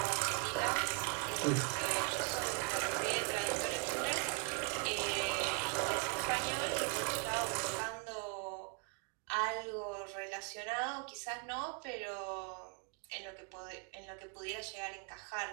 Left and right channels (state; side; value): quieter; left; 34.2 dB